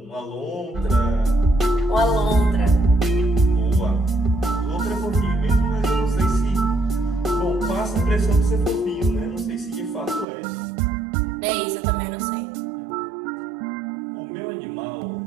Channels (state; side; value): drops out; left; at 10.2 s